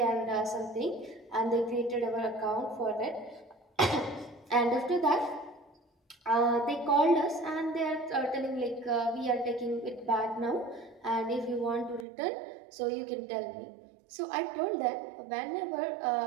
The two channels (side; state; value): left; drops out; at 12.1 s